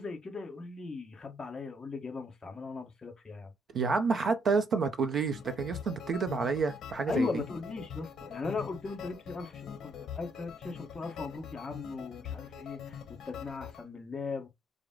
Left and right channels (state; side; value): normal; both; correlation 0.71